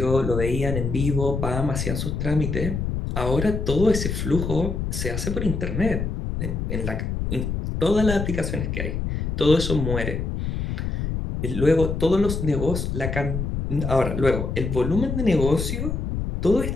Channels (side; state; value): left; noise; rumble, 3 dB below the sound